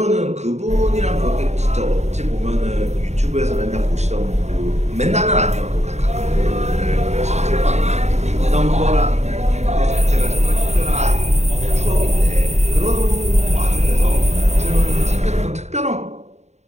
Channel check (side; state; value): left; late; 0.32 ms